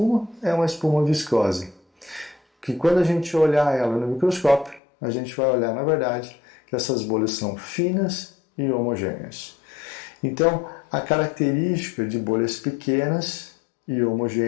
é uma espuma viscosa, que quando a gente olhar ela no microscópio, a gente vai olhar, na verdade, que essas bolhas são finas e homogêneas. Então, a característica de bolhas pequenas e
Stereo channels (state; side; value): drops out; right; at 4.8 s